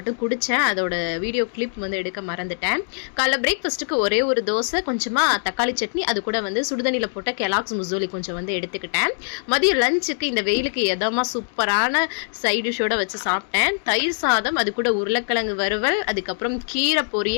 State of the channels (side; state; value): right; silent; digital silence